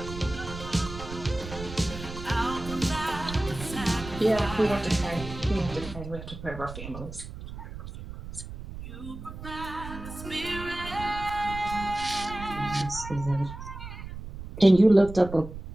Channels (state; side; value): noise; right; rumble, 11 dB below the sound